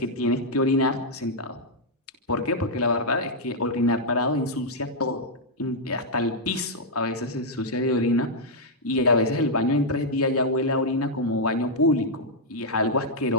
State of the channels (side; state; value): both; normal; correlation -0.04